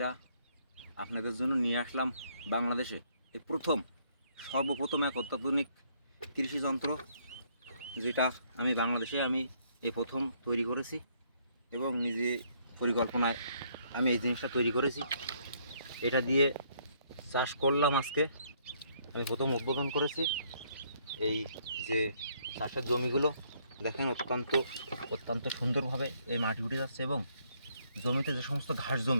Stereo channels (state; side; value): inverted; both; correlation -0.68